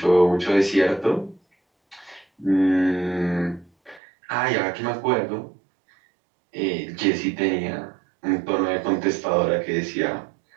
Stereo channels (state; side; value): drops out; left; at 4.0 s